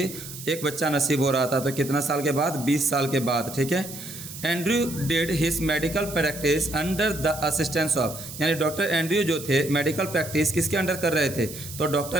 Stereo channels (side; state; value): right; noise; hiss, 12 dB below the sound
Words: एक बच्चा नसीब हो रहा था। तो कितना साल के बाद? 20 साल के बाद। ठीक है, Andrew did his medical practice under the assistance of, यानी डॉक्टर एंड्रयू जो थे मेडिकल प्रैक्टिस किसके अंडर कर रहे थे? तो